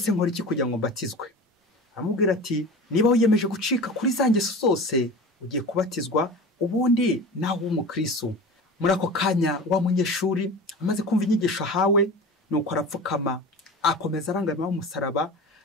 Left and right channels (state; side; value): normal; both; correlation 0.34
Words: nkora iki kugira ngo mbatizwe? Aramubwira ati niba wiyemeje gucika kuri za ngeso zose, ugiye kubatizwa, ubundi nawe w'umukristo. Muri ako kanya wa munyeshuri amaze kumva inyigisho ahawe, nuko arapfukama, akomeza arangamira umusaraba,